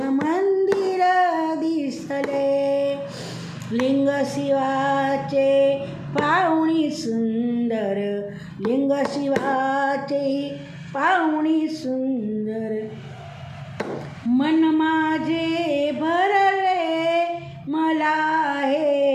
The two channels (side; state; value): both; identical; correlation 1.00